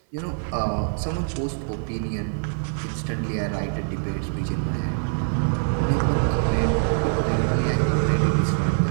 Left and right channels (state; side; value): silent; left; 62 dB below the other